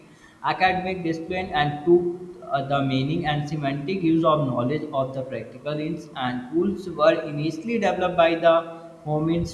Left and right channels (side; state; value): both; identical; correlation 1.00